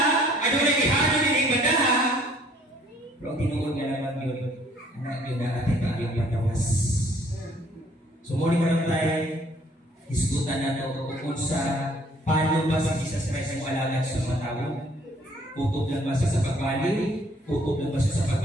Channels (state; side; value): normal; both; correlation 0.60